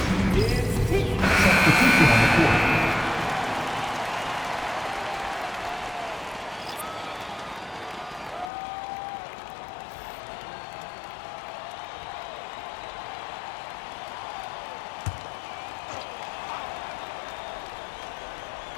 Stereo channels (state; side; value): drops out; right; at 8.5 s